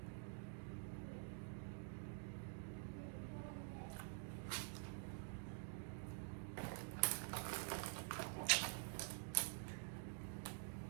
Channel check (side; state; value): left; silent; digital silence